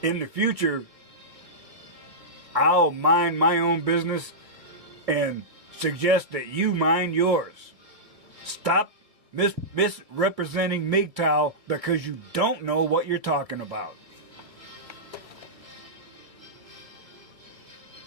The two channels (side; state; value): left; late; 2.4 ms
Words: In the future, I'll mind my own business and suggest that you mind yours. Stop misrepresenting MGTOW because you don't know what you're talking about.